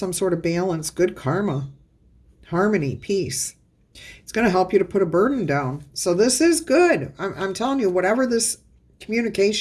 sort of balance, good karma, harmony, peace. It's going to help you to put a burden down. So this is good. I'm telling you, whatever this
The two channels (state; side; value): identical; both; correlation 1.00